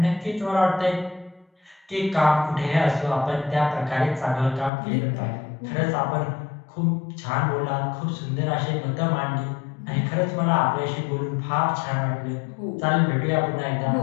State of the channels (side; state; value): right; drops out; at 4.7 s